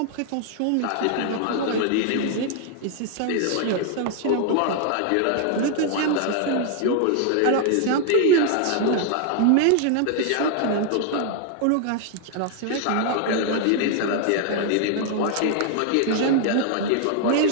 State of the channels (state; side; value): different; both; correlation 0.00